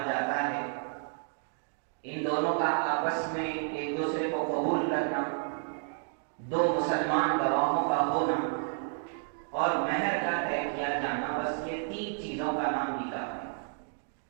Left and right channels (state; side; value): silent; left; 57 dB below the other